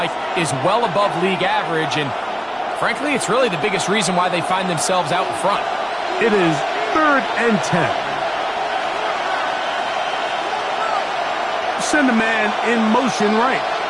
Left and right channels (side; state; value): both; identical; correlation 1.00